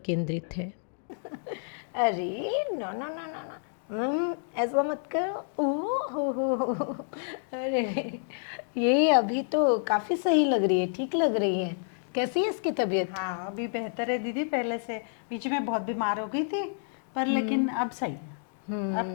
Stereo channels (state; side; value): silent; right; digital silence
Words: है। अरे no no no no no, ऐसा मत करो। हो। अरे ये अभी तो काफी सही लग रही है, ठीक लग रही है। कैसी है इसकी तबीयत? हाँ, अभी बेहतर है दीदी पहले से। बीच में बहुत बीमार हो गई थी पर लेकिन अब सही है।